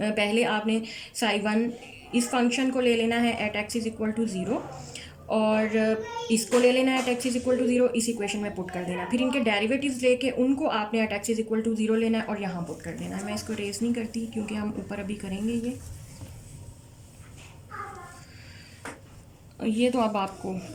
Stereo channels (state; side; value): identical; both; correlation 1.00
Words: आपने साई वन इस फंक्शन को ले लेना है at X is equal to zero और इसको ले लेना है at X is equal to zero, इस इक्वेशन में पुट कर देना। फिर इनके डेरिवेटिव्स लेके उनको आपने at X is equal to zero लेना है और यहाँ पुट कर देना है। मैं इसको रेस नहीं करती क्योंकि हम ऊपर अभी करेंगे ये तो अब आपको